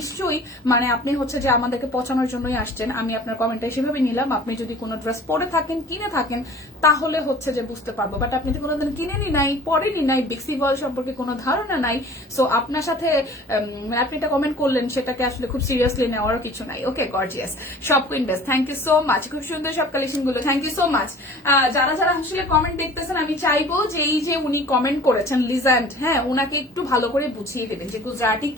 মানে আপনি হচ্ছে যে আমাদেরকে পচানোর জন্যই আসছেন, আমি আপনার কমেন্টটা সেভাবে নিলাম। আপনি যদি কোনো ড্রেস পরে থাকেন, কিনে থাকেন, তাহলে হচ্ছে যে বুঝতে পারবো। বাট আপনি তো কোনোদিন কিনেনি নাই, পরেনি নাই, বেক্সি বয়েল সম্পর্কে কোনো ধারণা নাই। সো আপনার সাথে আপনি এটা কমেন্ট করলেন, সেটাকে আসলে খুব সিরিয়াসলি নেওয়ার কিছু নাই। Okay, gorgeous shop queen best, thank you so much, খুব সুন্দর সব কালেকশন গুলো, থ্যাংক ইউ সো মাচ। যারা আসলে কমেন্ট দেখতেছেন, আমি চাইবো যে এই যে উনি কমেন্ট করেছেন লিজেন্ড, হ্যাঁ, উনাকে একটু ভালো করে বুঝিয়ে দেবেন যে গুজরাটি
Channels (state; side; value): normal; both; correlation 0.46